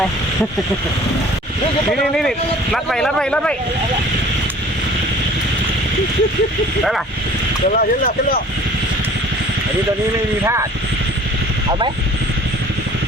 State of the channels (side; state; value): both; normal; correlation 0.49